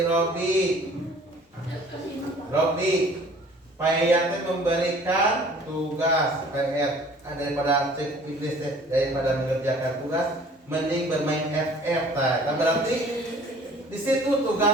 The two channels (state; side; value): normal; both; correlation 0.51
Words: Robi, Payatnya memberikan tugas PR daripada iblis, daripada mengerjakan tugas, mending bermain FF. Nah, berarti di situ